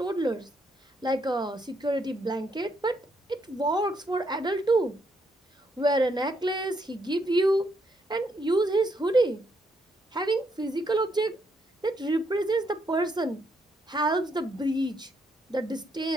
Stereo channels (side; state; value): both; normal; correlation 0.75